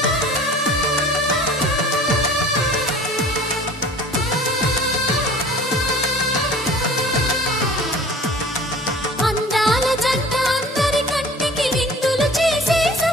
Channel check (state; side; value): normal; both; correlation 0.45